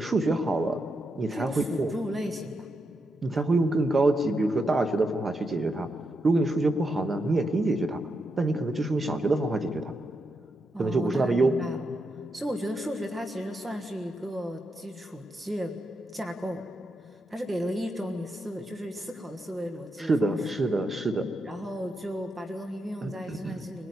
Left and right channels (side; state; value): both; normal; correlation 0.84